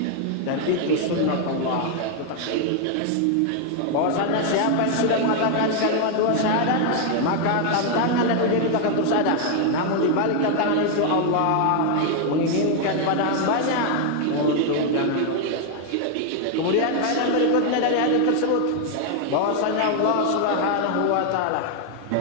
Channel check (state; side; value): different; both; correlation 0.00